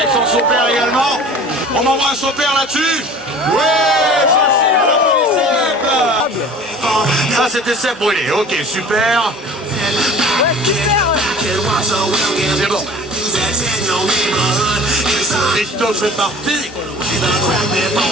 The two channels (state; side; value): normal; both; correlation 0.44